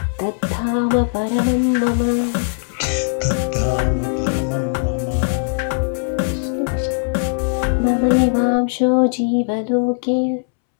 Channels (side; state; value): right; silent; 66 dB below the other